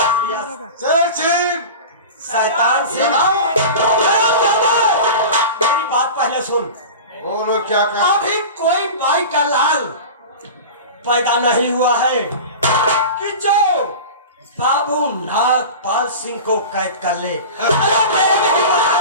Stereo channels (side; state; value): both; inverted; correlation -0.31